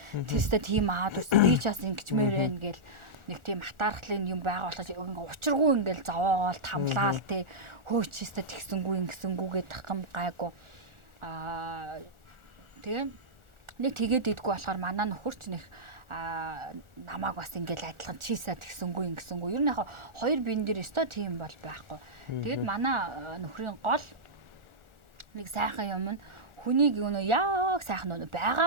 Тэстэ тийм аваад үсэ би чаас ингэчмээр байна гэл нэг тийм хатаархлын юм байгаа болохоо учиргүй ингээл зовоогоол тамлаал те хөөчөөстэй тэгсэнгүү ингэсэнгүүгээ тахам гайгүй тэгээ нэг тэгээд идэггүй болохоор манай нөхөрч нэг намааг бас ингээл адилхан чийсаа тэгсэнгүү ингэсэнгүү ер нь яг хоёр биен дээр өстой тийм бол байхгүй тэгээд манай нөхрийн гол нэг сайхан юм нь хүнийг юу яг сайхан нөө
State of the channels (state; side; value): late; left; 1.4 ms